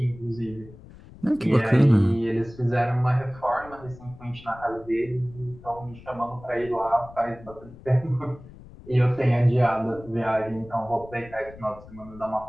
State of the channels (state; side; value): noise; left; rumble, 19 dB below the sound